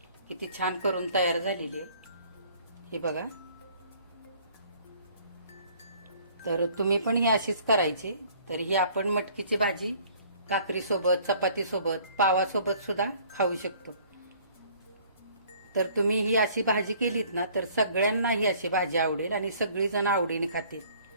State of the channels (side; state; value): both; inverted; correlation -0.56